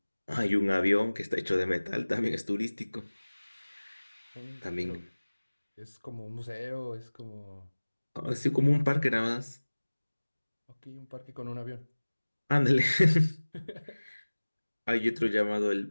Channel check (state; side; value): inverted; both; correlation -1.00